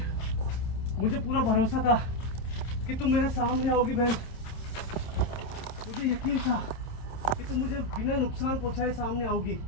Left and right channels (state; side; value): late; right; 26 ms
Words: मुझे पूरा भरोसा था कि तुम मेरे सामने आओगी बहन, मुझे यकीन था कि तुम मुझे बिना नुकसान पहुंचाए सामने आओगी।